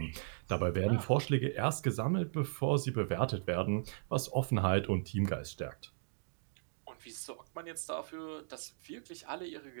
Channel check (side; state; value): left; silent; digital silence